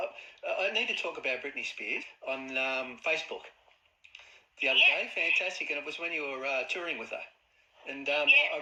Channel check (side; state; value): both; identical; correlation 1.00